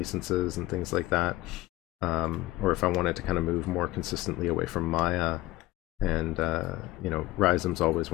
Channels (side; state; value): right; quieter; 17.9 dB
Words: and things like that, or if I wanted to kind of move more consistently away from Maya. And you know, Rhizome's always